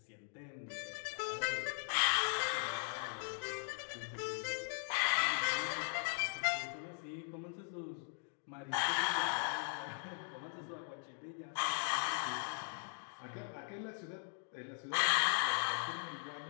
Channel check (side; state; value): right; silent; 51 dB below the other